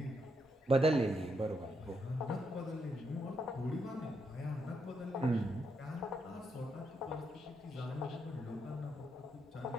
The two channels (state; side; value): normal; both; correlation 0.79